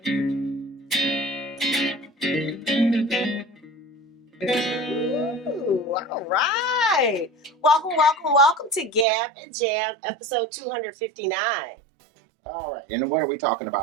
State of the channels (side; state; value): left; drops out; at 9.1 s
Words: all right. Welcome to Gab and Jam, episode 259. All right, and what are we talking